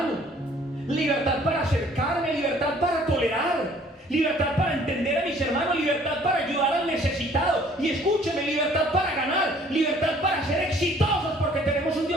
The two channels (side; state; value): both; normal; correlation 0.57